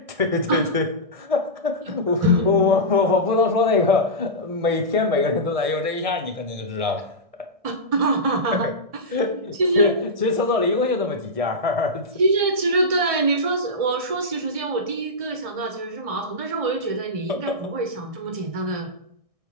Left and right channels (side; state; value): left; late; 1.6 ms